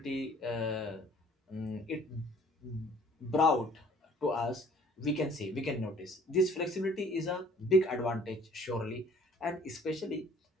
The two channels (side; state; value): both; normal; correlation 0.55